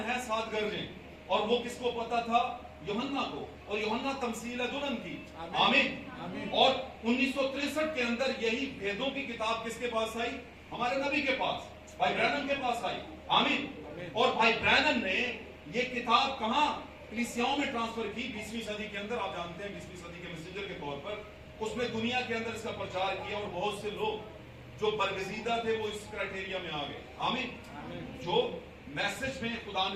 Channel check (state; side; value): identical; both; correlation 1.00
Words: ہے 7 گرجیں، اور وہ کس کو پتا تھا؟ یوحنا کو، اور یوحنا تمثیل ہے دلہن کی۔ آمین۔ اور 1963 کے اندر یہی بھیدوں کی کتاب کس کے پاس آئی؟ ہمارے نبی کے پاس، بھائی برانم کے پاس آئی۔ آمین۔ اور بھائی برانم نے یہ کتاب کہاں؟ کلیسیاؤں میں ٹرانسفر کی 20ویں صدی کے اندر۔ آپ جانتے ہیں 20ویں صدی کے میسنجر کے طور پر اس میں دنیا کے اندر اس کا پرچار کیا، اور بہت سے لوگ جو برگزیدہ تھے وہ اس کرائٹیریا میں آ گئے۔ آمین۔ جو میسج میں خدا